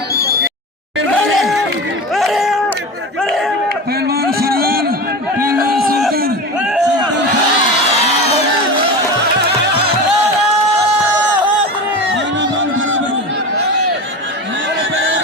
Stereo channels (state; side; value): normal; both; correlation 0.26